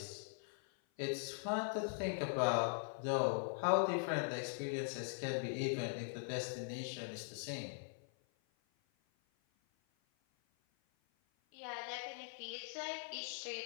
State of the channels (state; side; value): silent; right; 50 dB below the other